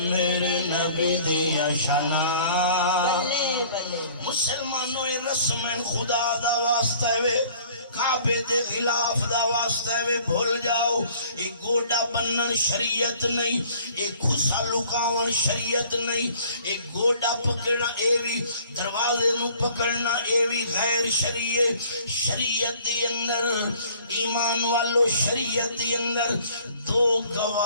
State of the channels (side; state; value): both; inverted; correlation -0.54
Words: نبی دیا شانہ مسلمانوں رسم خدا دا واسطہ ہے کعبے دے خلاف دا واسطہ ہے بھول جاؤ ایک گوڑا بنن شریعت نہیں ایک خسا لکاون شریعت نہیں ایک گوڑا پکڑنا ایوی دروازے نو پکڑنا ایوی غیر شریعت دی اندر ایمان والو شریعت دی اندر دو